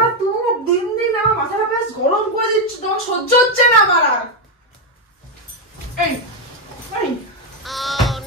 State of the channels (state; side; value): normal; both; correlation 0.04